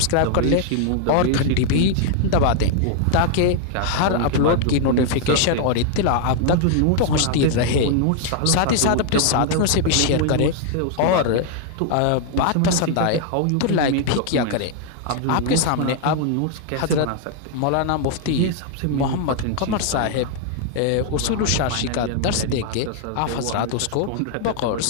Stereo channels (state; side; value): different; both; correlation 0.00